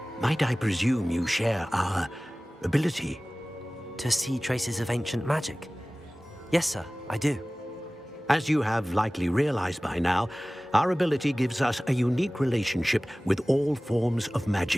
might I presume you share our ability? To see traces of ancient magic? Yes, sir, I do. As you have likely realized by now, our ability gives us a unique relationship with all forms of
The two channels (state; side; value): normal; both; correlation 0.98